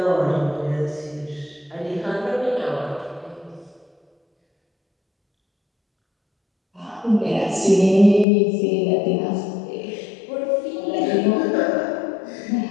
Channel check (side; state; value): right; drops out; at 8.2 s